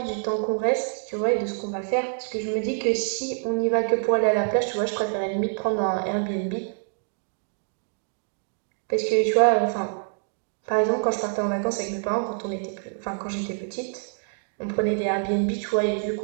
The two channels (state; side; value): silent; left; digital silence